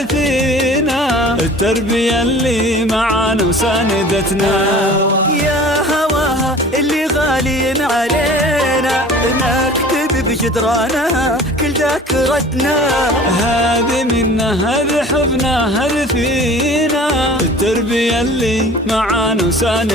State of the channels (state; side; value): normal; both; correlation 0.44